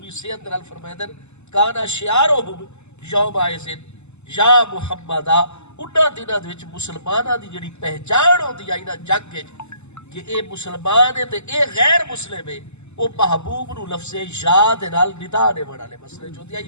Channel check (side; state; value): right; late; 0.82 ms